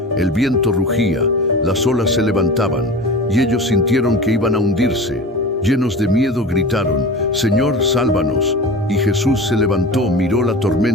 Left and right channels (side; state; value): both; normal; correlation 0.34